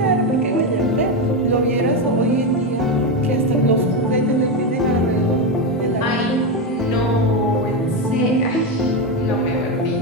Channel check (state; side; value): normal; both; correlation 0.10